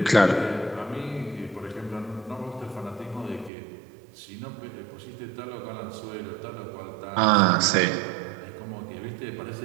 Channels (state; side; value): drops out; left; at 3.5 s